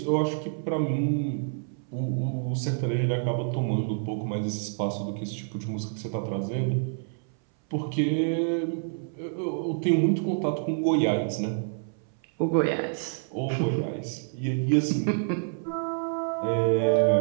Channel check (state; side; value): silent; left; 60 dB below the other